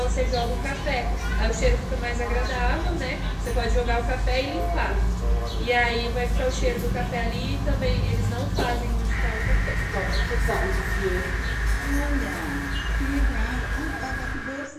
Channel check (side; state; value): both; identical; correlation 1.00